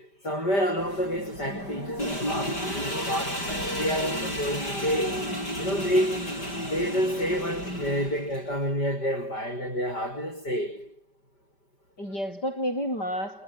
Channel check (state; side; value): late; right; 5.1 ms